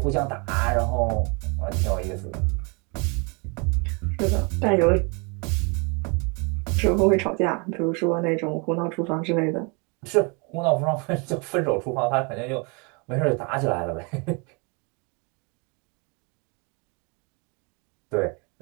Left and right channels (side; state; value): left; quieter; 32.6 dB